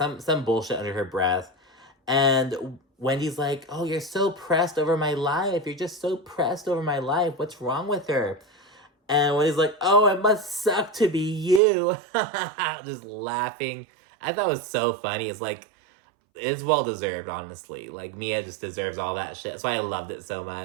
bullshit under her breath. And Wendy's like, oh, you're so pressed over my life. You're just so pressed over my life. What's wrong with her? And Wendy's like, oh, it must suck to be you. Just laughing. I thought it was so funny. It's like, it's well-deserved, honestly. Like, Mia just deserves all that shit. That's why I loved it so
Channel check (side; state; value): left; drops out; at 11.6 s